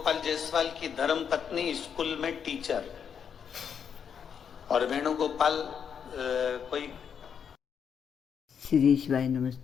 जायसवाल की धर्म पत्नी स्कूल में टीचर, और वेणुगोपाल कोई श्री शिवाय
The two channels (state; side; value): quieter; right; 7.4 dB